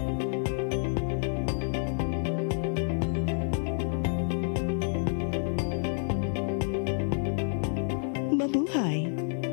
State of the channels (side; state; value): right; silent; 59 dB below the other